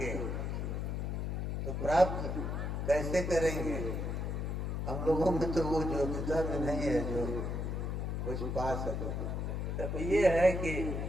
तो प्राप्त कैसे करेंगे? हम लोगों में तो वो योग्यता भी नहीं है जो कुछ पा सके। तब ये है कि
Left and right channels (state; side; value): noise; left; hum, 2 dB below the sound